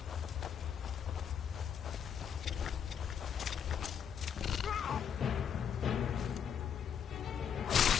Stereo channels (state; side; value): quieter; right; 7.9 dB